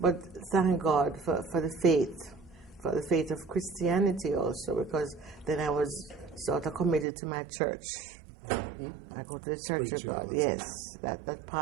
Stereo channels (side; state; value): left; drops out; at 7.1 s